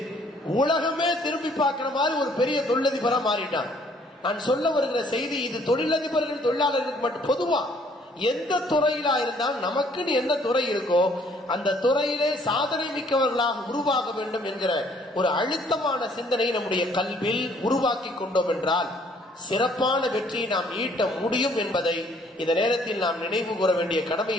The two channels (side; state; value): both; normal; correlation 0.62